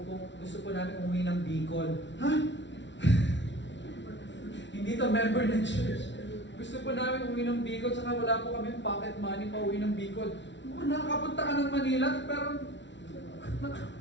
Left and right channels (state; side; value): late; right; 0.52 ms